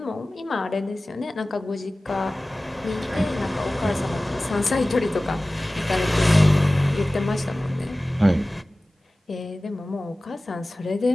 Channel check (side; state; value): both; normal; correlation 0.97